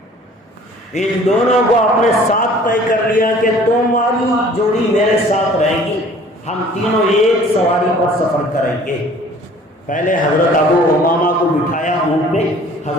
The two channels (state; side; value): normal; both; correlation 0.51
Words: ان دونوں کو اپنے ساتھ طے کر لیا کہ تمہاری جوڑی میرے ساتھ رہے گی، ہم تینوں ایک سواری پر سفر کریں گے۔ پہلے حضرت ابو امامہ کو بٹھایا اونٹ پہ،